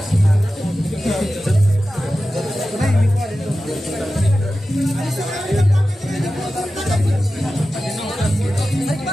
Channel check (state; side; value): normal; both; correlation 0.94